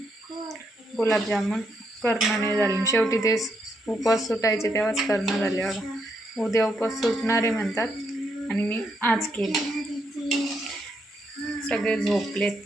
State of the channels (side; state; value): both; normal; correlation 0.78